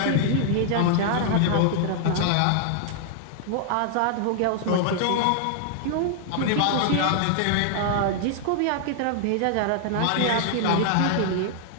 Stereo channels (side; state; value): both; different; correlation -0.01